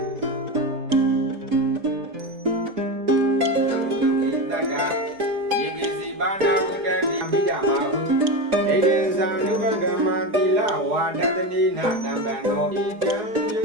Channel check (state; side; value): late; left; 4.8 ms